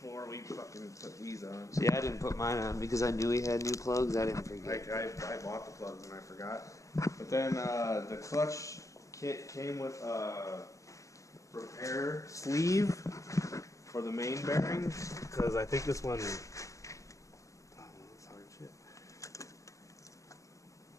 we fucking put these on. See, I didn't put mine on because I knew he had new plugs. I didn't forget. I bought the plugs and I forgot. But then the clutch kit came with a repair sleeve for the main bearings, because I think this one. Oh, that's hard shit.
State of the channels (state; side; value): late; right; 0.15 ms